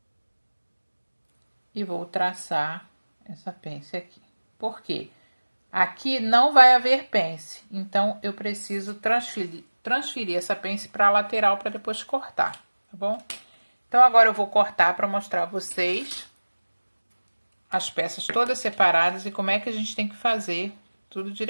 e vou traçar essa pence aqui. Por quê? Aqui não vai haver pence, então eu preciso transferir essa pence para a lateral para depois cortar, tá bom? Então agora eu vou cortar para mostrar a vocês as peças todas separadas e como é que a gente tem que fazer tudo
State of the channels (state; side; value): inverted; both; correlation -1.00